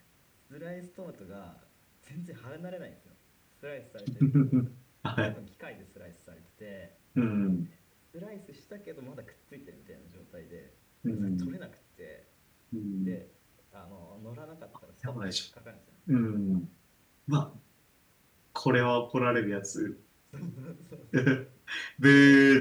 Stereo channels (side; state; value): both; identical; correlation 1.00